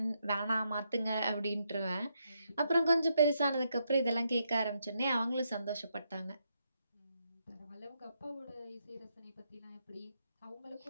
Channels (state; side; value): inverted; both; correlation -0.79